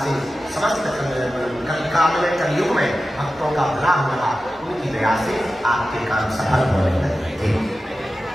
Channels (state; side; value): normal; both; correlation 0.93